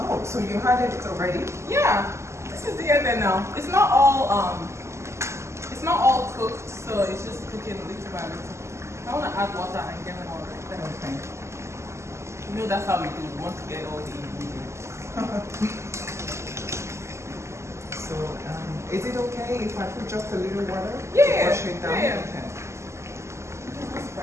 so you had it already? Yeah. This is the end now. It's not all cooked, so it's just cooking little by little. I want to add water and get more right there. Okay. You know that's how we do. We want to get all the ingredients. So is it okay if I put just a little water? Yeah, To wash it down? yeah. Okay. That's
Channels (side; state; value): left; late; 0.13 ms